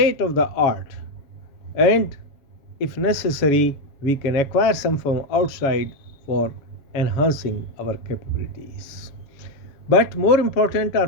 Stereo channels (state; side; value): late; right; 7.2 ms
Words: of the art, and if necessary we can acquire some from outside for enhancing our capabilities. But more important